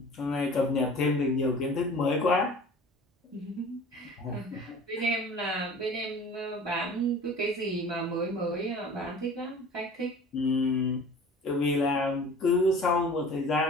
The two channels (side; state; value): both; normal; correlation 0.43